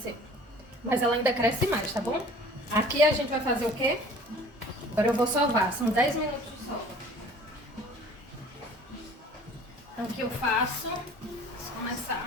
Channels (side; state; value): both; normal; correlation 0.48